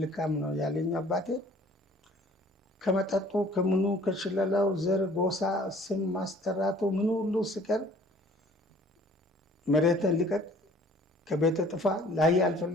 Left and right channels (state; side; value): normal; both; correlation 0.53